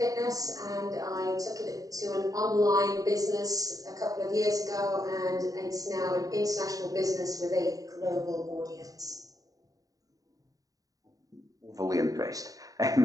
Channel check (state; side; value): late; left; 0.17 ms